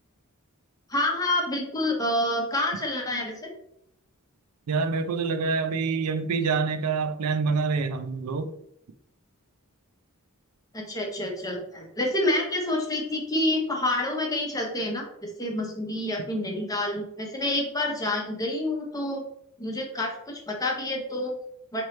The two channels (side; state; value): both; normal; correlation 0.17